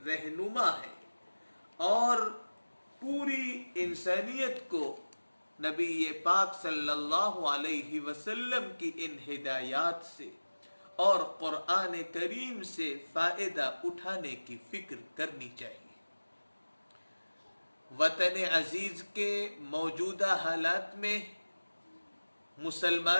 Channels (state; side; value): inverted; both; correlation -1.00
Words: رہنما ہے اور پوری انسانیت کو نبی پاک صلی اللہ علیہ وسلم کی ان ہدایات سے اور قرآن کریم سے فائدہ اٹھانے کی فکر کرنی چاہیے. وطن عزیز کے موجودہ حالات میں